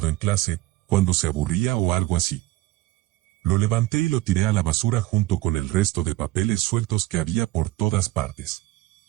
en clase, cuando se aburría o algo así. Lo levanté y lo tiré a la basura junto con el resto de papeles sueltos que había por todas partes.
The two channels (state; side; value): quieter; left; 17.5 dB